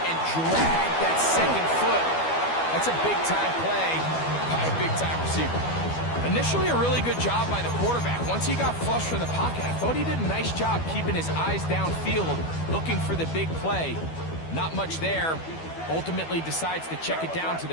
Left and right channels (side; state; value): right; late; 12 ms